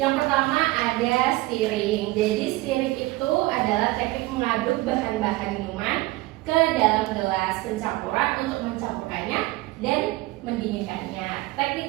pertama ada stirring. Jadi stirring itu adalah teknik mengaduk bahan-bahan minuman ke dalam gelas pencampuran untuk mencampurkannya dan mendinginkannya. Teknik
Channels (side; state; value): left; quieter; 20.0 dB